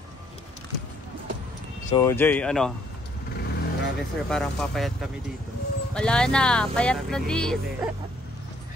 So, Jay, Grabe, sir. Parang papayat kami dito. Wala na. Payat na dis.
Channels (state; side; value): normal; both; correlation 0.66